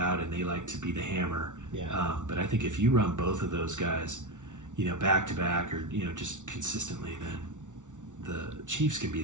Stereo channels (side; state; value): left; late; 0.86 ms